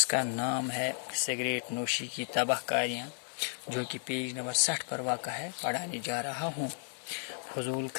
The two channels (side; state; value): right; silent; 55 dB below the other